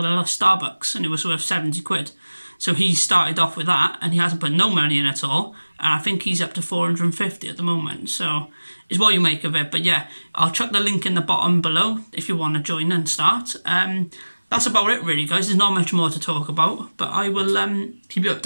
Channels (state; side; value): inverted; both; correlation -1.00